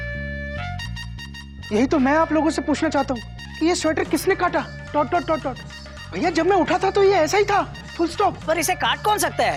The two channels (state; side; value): identical; both; correlation 1.00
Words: यही तो मैं आप लोगों से पूछना चाहता हूँ कि ये स्वेटर किसने काटा, डॉट डॉट डॉट डॉट। भैया, जब मैं उठा था तो ये ऐसा ही था, फुल स्टॉप। पर इसे काट कौन सकता